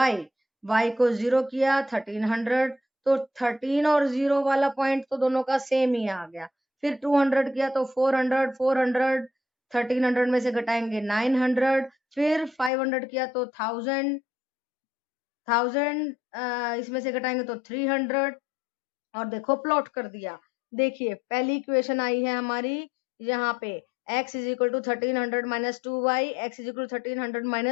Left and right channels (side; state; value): right; drops out; at 12.7 s